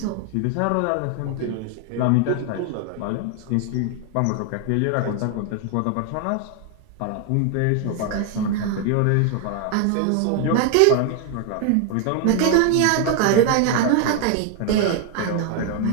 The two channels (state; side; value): different; both; correlation 0.01